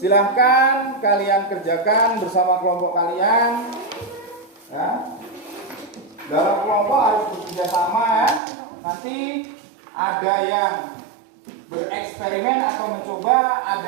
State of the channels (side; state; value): left; drops out; at 8.4 s